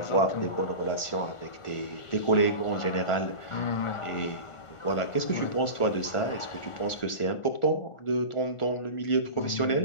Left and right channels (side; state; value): right; late; 1.4 ms